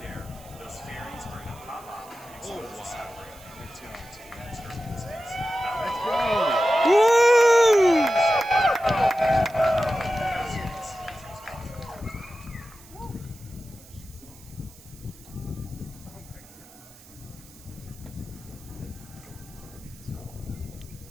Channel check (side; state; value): right; noise; hiss, 22 dB below the sound